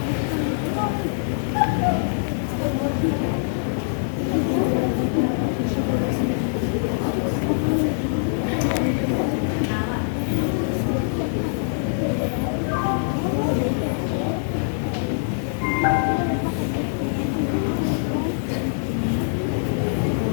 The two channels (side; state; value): right; silent; 63 dB below the other